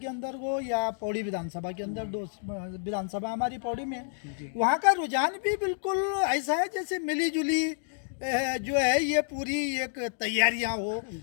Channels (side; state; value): right; silent; digital silence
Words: अंदर हो या पौड़ी विधानसभा के अंदर। 2 विधानसभा हमारी पौड़ी में, वहाँ का रुझान भी बिल्कुल ऐसा है जैसे मिली जुली जो है ये पूरी एक तैयारियां हो